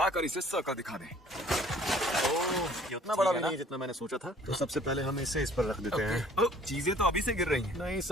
इसे सर्कल दिखा दें। ये उतना बड़ा भी नहीं है जितना मैंने सोचा था। तो सबसे पहले हम इसे इस पर रख देते हैं। चीजें तो अभी से गिर रही हैं। नहीं,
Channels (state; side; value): normal; both; correlation 0.55